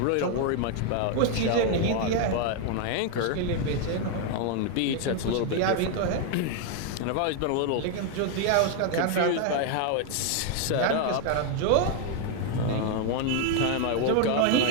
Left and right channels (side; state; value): both; different; correlation 0.00